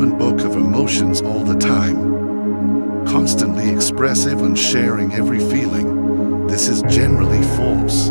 book of emotions all the time, constantly expressive and sharing every feeling. This is generally false.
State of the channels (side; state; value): both; inverted; correlation -1.00